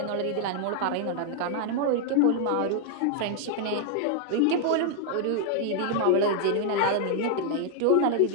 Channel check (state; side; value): different; both; correlation 0.00